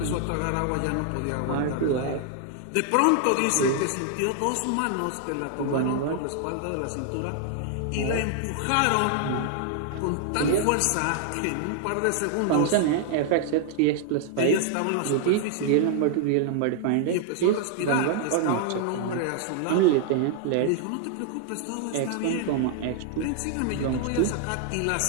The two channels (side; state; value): both; different; correlation 0.00